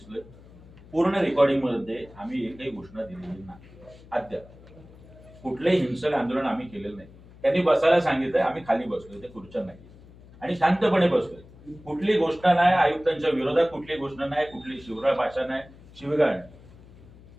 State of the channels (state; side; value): noise; left; hum, 22 dB below the sound